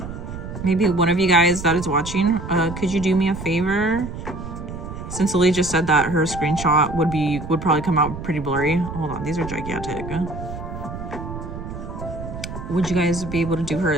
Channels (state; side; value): noise; right; rumble, 9 dB below the sound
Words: one of you guys that is watching, could you do me a favor? Since Lily just said that her screenshot would probably come out pretty blurry. Hold on, these are gigantic. Would you guys be able to do her